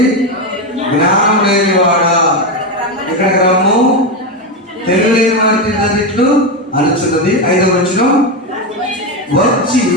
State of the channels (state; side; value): normal; both; correlation 0.11